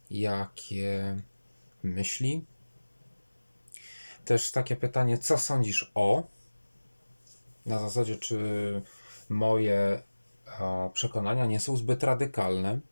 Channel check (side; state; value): both; inverted; correlation -1.00